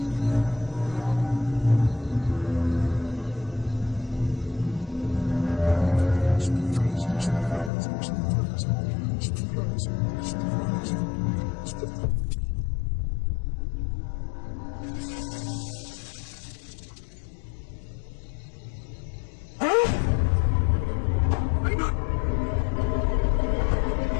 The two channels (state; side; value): drops out; right; at 7.7 s